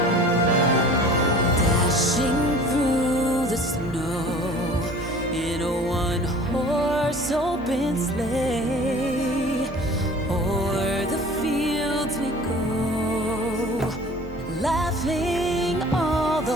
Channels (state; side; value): normal; both; correlation 0.45